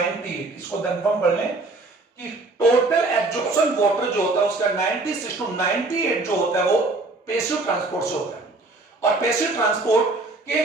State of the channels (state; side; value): quieter; left; 3.2 dB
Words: इसको कंफर्म कर लें कि टोटल एब्जॉर्प्शन वाटर जो होता है उसका 96 to 98 जो होता है वो पैसिव ट्रांसपोर्ट से होता है। और पैसिव ट्रांसपोर्ट के